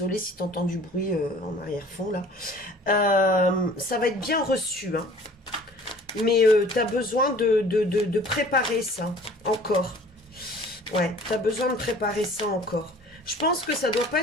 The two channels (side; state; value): both; normal; correlation 0.49